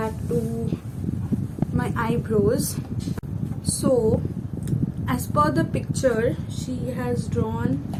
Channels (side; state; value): both; identical; correlation 1.00